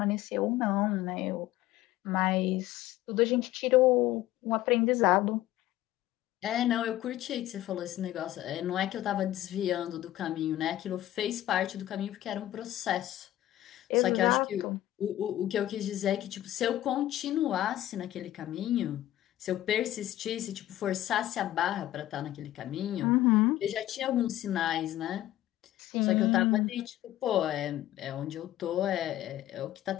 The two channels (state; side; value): quieter; right; 14.2 dB